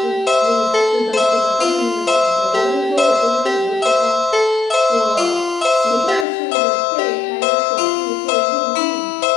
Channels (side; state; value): right; drops out; at 6.2 s